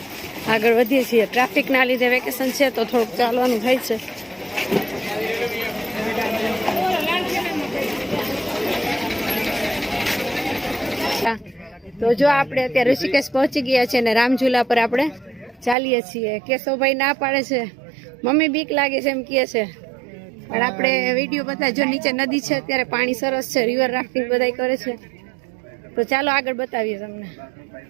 આગળ વધીએ છીએ. ટ્રાફિકના લીધે વેકેશન છે તો થોડુંક ચાલવાનું થાય છે. તો જો આપણે અત્યારે ઋષિકેશ પહોંચી ગયા છે અને રામઝુલા પર આપણે ચાલીએ છીએ. કેશવભાઈ ના પાડે છે, મમ્મી બીક લાગે છે એમ કહે છે, પણ આપણે વિડીયો બધા જો નીચે નદી છે, અત્યારે પાણી સરસ છે, રિવર રાફ્ટિંગ બધા કરે છે. તો ચાલો આગળ બતાવીએ તમને.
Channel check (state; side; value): drops out; left; at 15.8 s